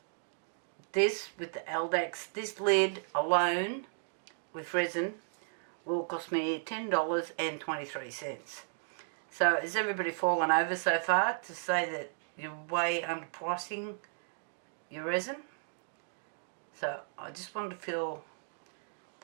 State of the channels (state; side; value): silent; left; digital silence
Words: this with the Eldex, this lid alone with resin will cost me $10.23. So has everybody fallen over so far to say that you're way underpricing your resin? So I just wanted to fill